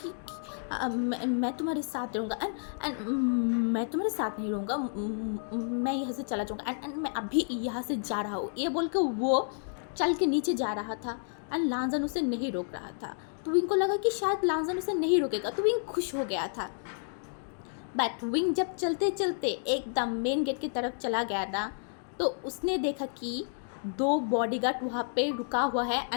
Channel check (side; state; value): right; silent; digital silence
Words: कि मैं तुम्हारे साथ रहूँगा एंड मैं तुम्हारे साथ नहीं रहूँगा, मैं यहाँ से चला जाऊँगा एंड मैं अभी यहाँ से जा रहा हूँ। ये बोल कर वो चल के नीचे जा रहा था एंड लानजन उसे नहीं रोक रहा था। तो विंग को लगा कि शायद लानजन उसे नहीं रोकेगा, तो विंग खुश हो गया था। बट विंग जब चलते चलते एकदम मेन गेट की तरफ चला गया ना, तो उसने देखा कि 2 बॉडीगार्ड वहाँ पे रुका हुआ है